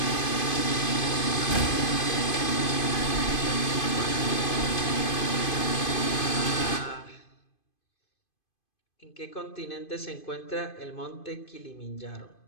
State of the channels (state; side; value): late; right; 2.5 ms